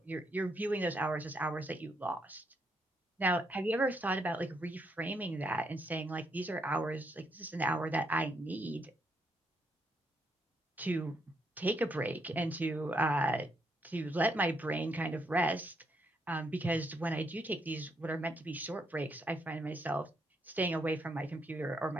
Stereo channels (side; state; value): both; normal; correlation 0.76